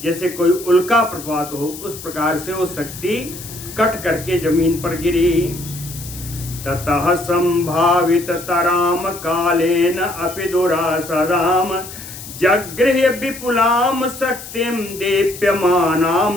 जैसे कोई उल्का प्रभात हो, उस प्रकार से वो शक्ति कट करके जमीन पर गिरी। ततः संभावित तराम कालेन अपि दुरासदाम जगृह्य विपुलाम शक्तिम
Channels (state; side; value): noise; left; hiss, 13 dB below the sound